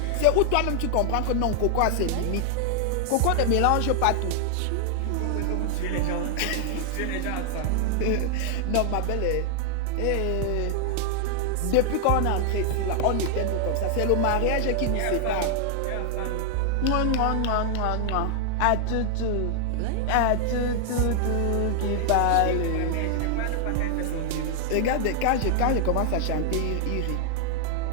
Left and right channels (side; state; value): both; different; correlation 0.00